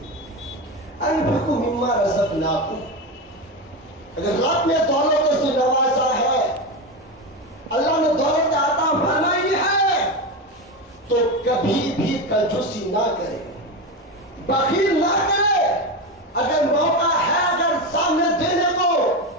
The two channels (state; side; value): normal; both; correlation 0.17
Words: انفقوا مما رزقناکم. اگر رب نے دولت سے نوازا ہے, اللہ نے دولت عطا فرمائی ہے, تو کبھی بھی کنجوسی نہ کرے, بخیل نہ کرے. اگر موقع ہے اگر سامنے دینے کو